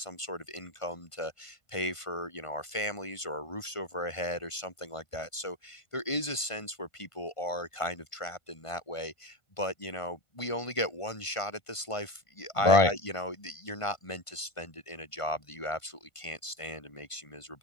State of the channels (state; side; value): late; right; 1.5 ms